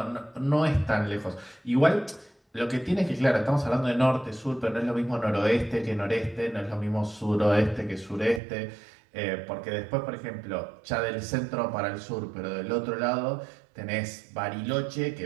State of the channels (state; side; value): drops out; left; at 8.4 s